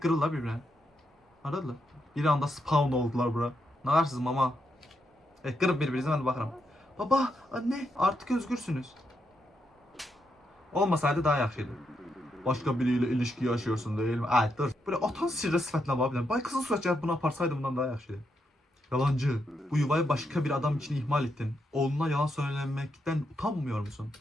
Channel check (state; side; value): normal; both; correlation 0.81